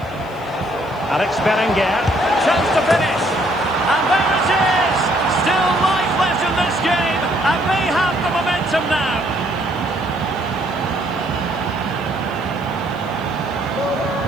Alex Berenguer. Chance to finish. And there it is! Still life left in this game. And they have the momentum now.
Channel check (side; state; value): right; noise; hiss, 29 dB below the sound